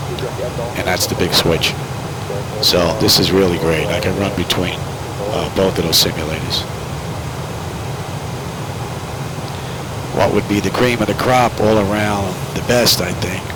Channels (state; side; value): identical; both; correlation 1.00